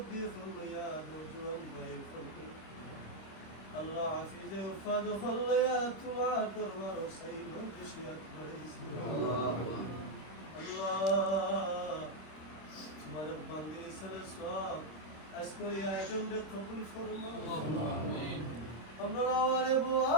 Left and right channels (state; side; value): late; right; 26 ms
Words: হইয়া নজওয়ান ভাই ফরমাই আল্লাহ হাফিজে উফাদ হইয়া তোমার দরবার সেই মজলিসিয়াত করেছি আল্লাহ তোমার বান্দে সালাত আজকের আয়োজনকে কবুল ফরমাও আমিন আমরা আওয়ারে